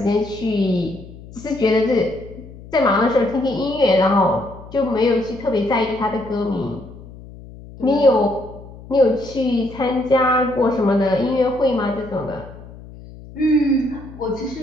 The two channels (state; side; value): noise; left; hum, 17 dB below the sound